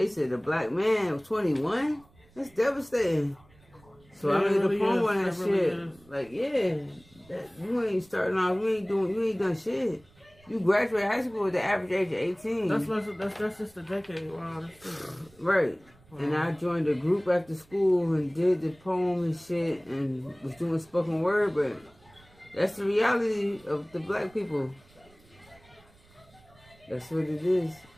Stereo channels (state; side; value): noise; right; rumble, 28 dB below the sound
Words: said a black man was 21? That's devastating. So I made a poem on that shit. Like, yeah, you ain't starting off, you ain't done shit. You graduated high school with the average age of 18. That's just a decade. Wow, that's true. Right. And I joined a group after school and did the poem and shit and was doing spoken word, but that's the reality of the black people. That's what it is.